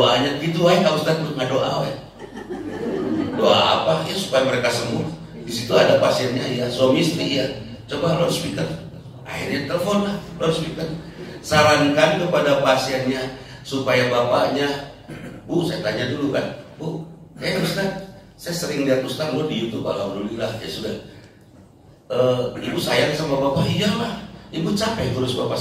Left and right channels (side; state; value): both; identical; correlation 1.00